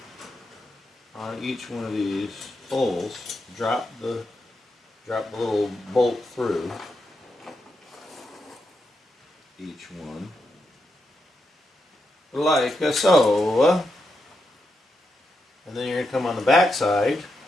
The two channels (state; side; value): normal; both; correlation 0.84